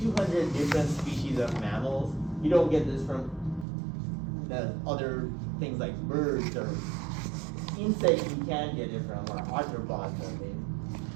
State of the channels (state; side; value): drops out; left; at 3.7 s